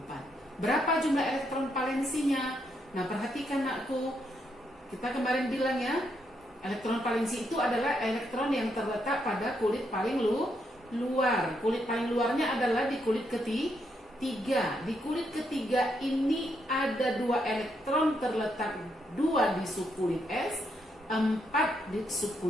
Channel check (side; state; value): both; normal; correlation 0.78